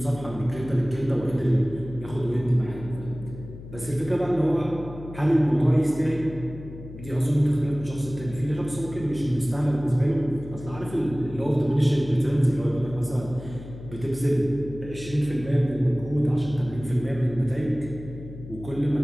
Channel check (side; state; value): left; noise; hum, 14 dB below the sound